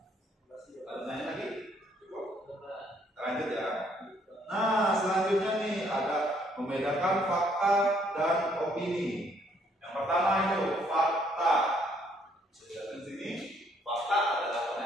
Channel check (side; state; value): both; normal; correlation 0.67